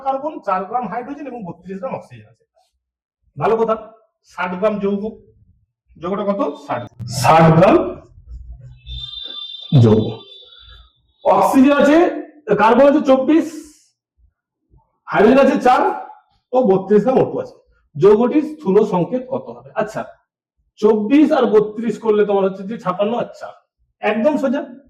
কার্বন, 4 গ্রাম হাইড্রোজেন এবং 32 গ্রাম অক্সিজেন আছে। ভালো কথা, 60 গ্রাম যৌগ, যৌগটা কত? 60 গ্রাম যৌগ, অক্সিজেন আছে, কার্বন আছে 24, হাইড্রোজেন আছে 4 ও 32 গ্রাম O2 আছে। যৌগটির স্থূল সংকেত কত হবে? আচ্ছা, 24 আর 32 করলে তোমার হচ্ছে যে 56। আচ্ছা, একদম সোজা,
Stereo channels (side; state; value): both; identical; correlation 1.00